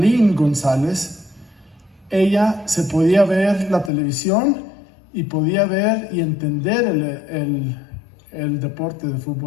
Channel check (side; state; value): right; drops out; at 3.9 s